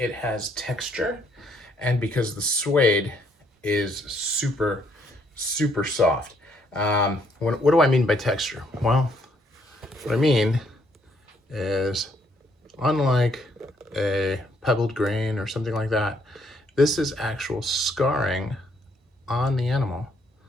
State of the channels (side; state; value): both; normal; correlation 0.69